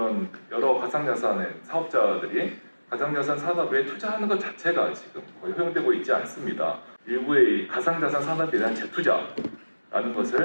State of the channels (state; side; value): inverted; both; correlation -1.00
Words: 여러 가상자산의 사업자들이 가상자산 산업에 투자하는 것 자체가 지금 거의 허용되고 있지 않습니다. 일부의 가상자산 산업에 대한 재투자라는